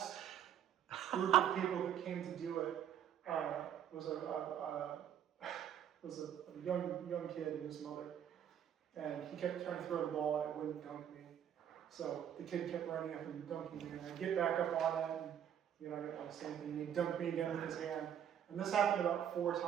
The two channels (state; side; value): quieter; left; 9.5 dB